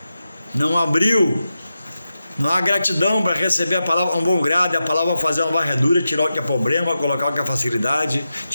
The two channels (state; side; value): inverted; both; correlation -0.91